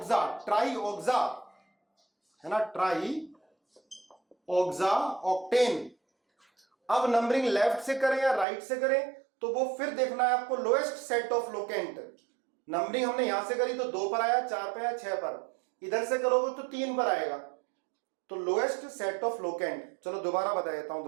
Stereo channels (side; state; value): left; drops out; at 8.5 s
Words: ट्राई ऑक्सा है ना, ट्राई ऑक्सा ऑक्टेन। अब नंबरिंग लेफ्ट से करें या राइट से करें, तो वो फिर देखना है आपको lowest set of locant. Numbering हमने यहां से करी तो 2 पर आया, 4 पर आया, 6 पर, इधर से करोगे तो 3 पर आएगा, तो लोएस्ट सेट ऑफ लोकेंट। चलो दोबारा बता देता हूं